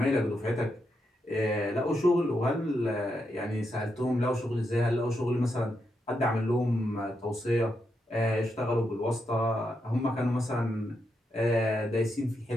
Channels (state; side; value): normal; both; correlation 0.83